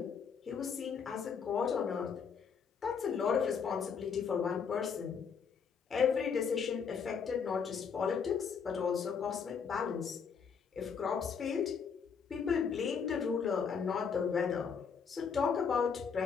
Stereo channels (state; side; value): quieter; right; 6.4 dB